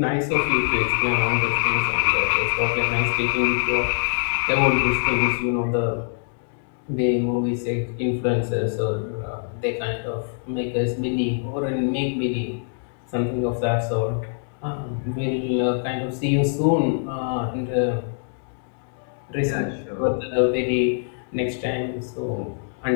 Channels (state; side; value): silent; right; digital silence